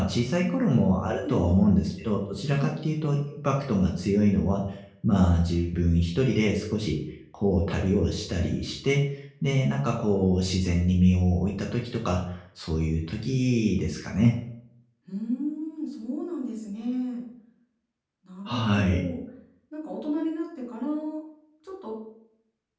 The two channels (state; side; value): identical; both; correlation 1.00